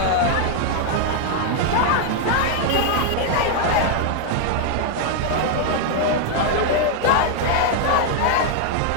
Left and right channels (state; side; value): different; both; correlation 0.00